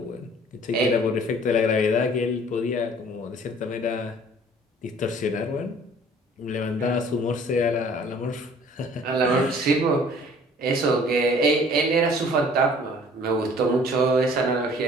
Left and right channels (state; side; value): normal; both; correlation 0.53